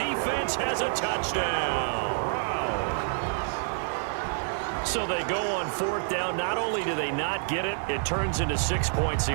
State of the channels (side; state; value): left; silent; digital silence